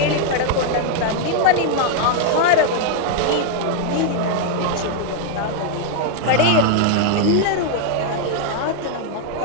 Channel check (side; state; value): both; different; correlation 0.00